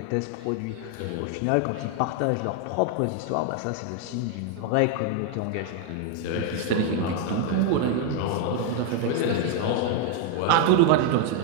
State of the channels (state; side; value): different; both; correlation 0.01